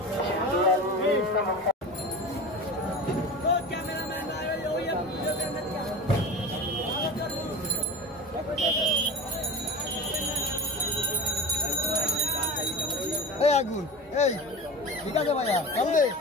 এই আগুন এই ঠিক আছে ভাইয়া চলবে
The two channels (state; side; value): normal; both; correlation 0.31